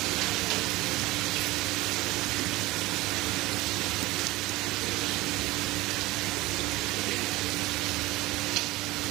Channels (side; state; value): left; quieter; 19.6 dB